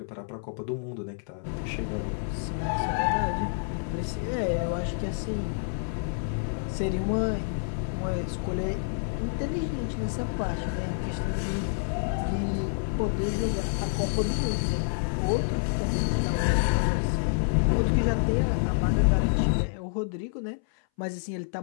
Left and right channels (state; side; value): silent; right; 59 dB below the other